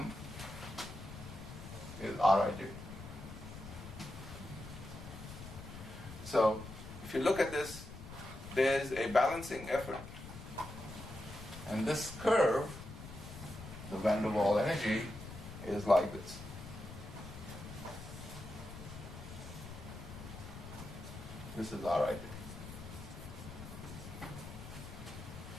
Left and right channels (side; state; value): left; noise; rumble, 12 dB below the sound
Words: is Rij. So if you look at this there's a balancing effort. And this curve, the van der Waals energy, is like this. This is our idea.